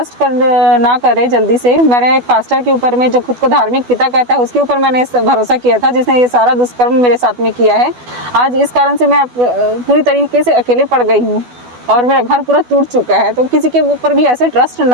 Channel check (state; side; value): late; left; 12 ms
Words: ना करे जल्दी से। मैंने एक पास्टर के ऊपर में, जो खुद को धार्मिक पिता कहता है, उसके ऊपर मैंने भरोसा किया था, जिसने ये सारा दुष्कर्म मेरे साथ में किया है। आज इस कारण से मैं पूरी तरीके से अकेले पड़ गई हूँ और मेरा घर पूरा टूट चुका है। तो किसी के ऊपर भी ऐसे ट्रस्ट